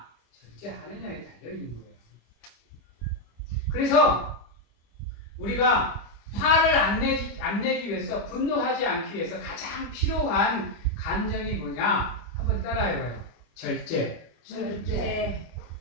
절제하느냐에 달려있는 거예요. 그래서 우리가 화를 안 내기 위해서, 분노하지 않기 위해서 가장 필요한 감정이 뭐냐? 한번 따라해봐요. 절제.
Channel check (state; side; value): late; right; 25 ms